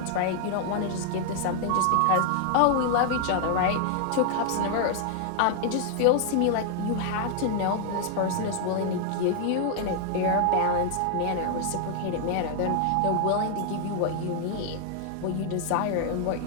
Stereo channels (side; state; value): both; different; correlation 0.00